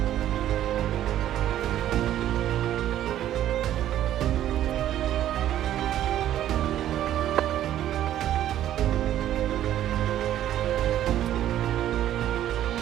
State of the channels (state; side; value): quieter; left; 12.1 dB